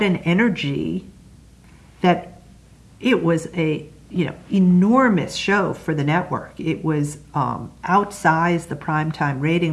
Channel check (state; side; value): identical; both; correlation 1.00